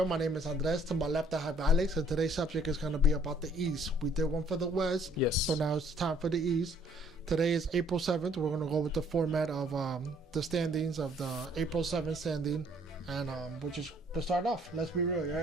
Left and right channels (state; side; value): normal; both; correlation 0.61